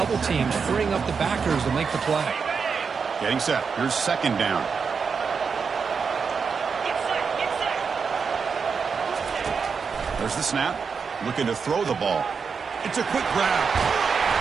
teams, freeing up the backers to make the play. Getting set. Here's second down. There's the snap. Looking to throw the ball. It's a quick grab.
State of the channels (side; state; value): left; quieter; 5.7 dB